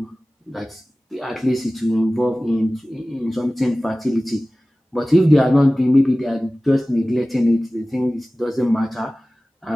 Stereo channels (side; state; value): both; normal; correlation 0.97